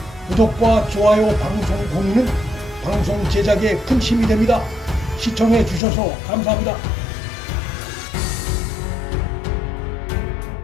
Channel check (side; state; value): right; drops out; at 5.8 s